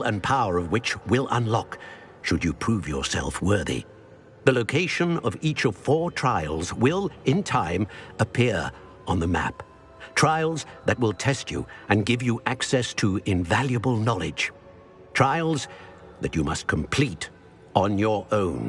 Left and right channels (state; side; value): identical; both; correlation 1.00